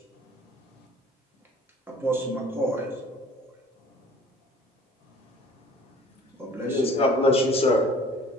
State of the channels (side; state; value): both; normal; correlation 0.50